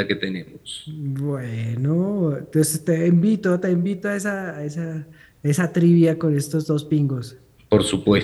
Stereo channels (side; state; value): both; identical; correlation 1.00